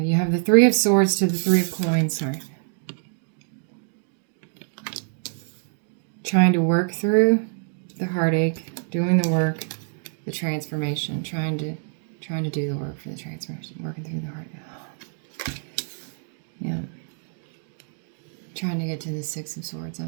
you have the Three of Swords to the Three of Coins. Sorry. Trying to work through the heartache, doing the work, the transformation, trying to do the work for the transformation, working through the heartache. Yeah. Trying to get to the Six of Swords, I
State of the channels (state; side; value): silent; left; 57 dB below the other